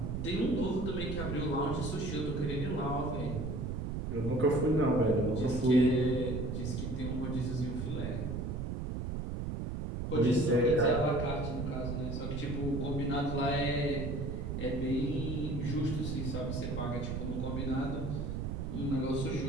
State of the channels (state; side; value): noise; right; rumble, 3 dB below the sound